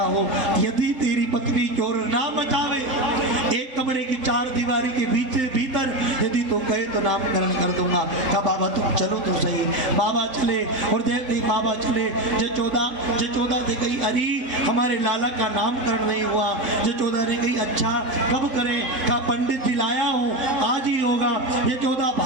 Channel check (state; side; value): late; left; 3.7 ms